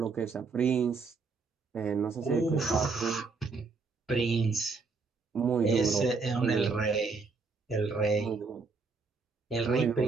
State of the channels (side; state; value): left; quieter; 4.4 dB